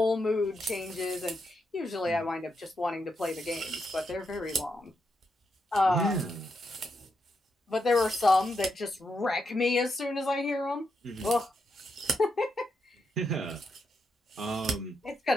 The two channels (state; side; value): normal; both; correlation 0.83